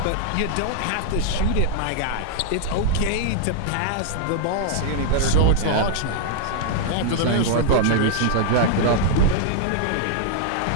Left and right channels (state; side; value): different; both; correlation -0.01